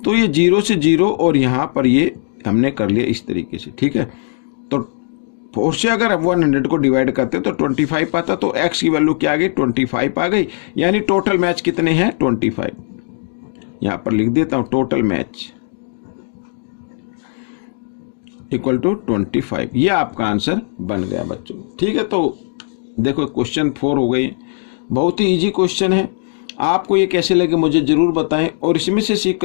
तो ये 0 से 0 और यहाँ पर ये हमने कर लिया इस तरीके से, ठीक है। तो 4 से अगर 100 को डिवाइड करते तो 25 पाता, तो x की वैल्यू क्या आ गई, 25 आ गई। यानी टोटल मैच कितने हैं, 25। यहाँ पर लिख देता हूँ टोटल मैच इक्वल टू 25, ये आपका आंसर बन गया बच्चों, ठीक है। तो देखो क्वेश्चन 4 हो गई, बहुत ही इजी क्वेश्चन है। आपको ये कैसे लगे मुझे ज़रूर बताएं और इसमें से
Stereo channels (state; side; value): silent; right; 63 dB below the other